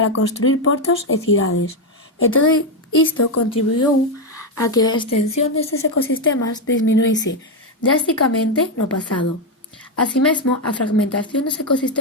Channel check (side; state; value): both; normal; correlation 0.06